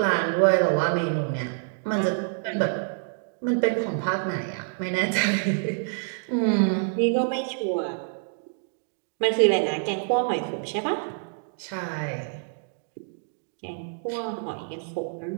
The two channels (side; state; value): left; silent; digital silence